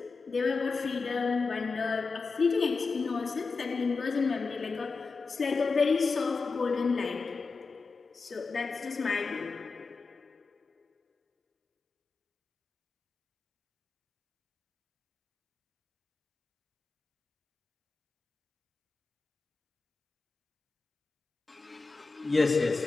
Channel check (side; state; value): right; quieter; 4.3 dB